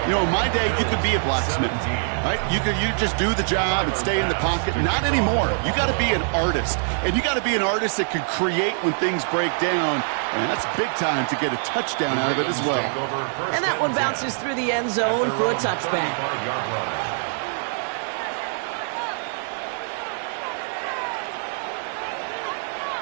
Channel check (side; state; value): left; silent; 63 dB below the other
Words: You know, in my day, you could be a blacksmith, right? You just do the job and stay in the pocket. Not anymore. You got to be an artist, and you got to be an artist that can create when things break down. And that's big time to get a touchdown out of it as well. And that one bounces through the end zone for a touchback.